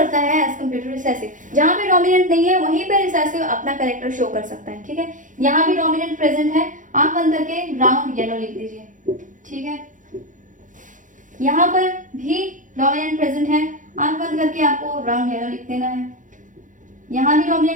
है एज कम्पेयर टू रिसेसिव। जहां पे डोमिनेंट नहीं है वहीं पे रिसेसिव अपना कैरेक्टर शो कर सकता है, ठीक है। यहाँ भी डोमिनेंट प्रेजेंट है, आंख बंद करके राउंड येलो लिख दीजिए, ठीक है। यहाँ पर भी डोमिनेंट प्रेजेंट है, आंख बंद करके आपको राउंड येलो लिख देना है। यहाँ भी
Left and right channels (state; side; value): late; left; 0.37 ms